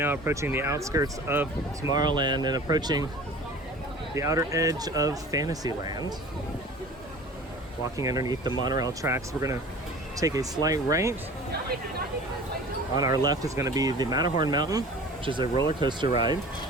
approaching the outskirts of Tomorrowland and approaching the outer edge of Fantasyland. Walking underneath the monorail tracks, we're going to take a slight right. On our left is going to be the Matterhorn Mountain, which is a roller coaster ride.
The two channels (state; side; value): normal; both; correlation 0.42